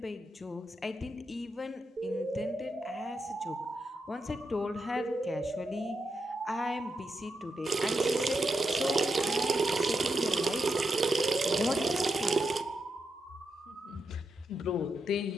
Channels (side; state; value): both; normal; correlation 0.85